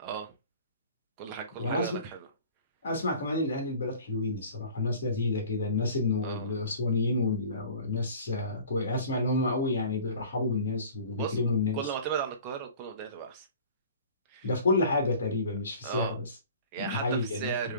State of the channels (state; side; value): inverted; both; correlation -0.45